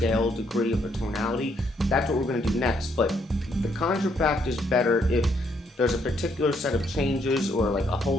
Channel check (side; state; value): both; normal; correlation 0.72